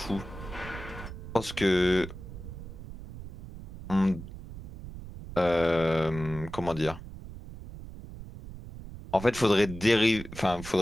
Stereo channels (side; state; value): right; noise; rumble, 12 dB below the sound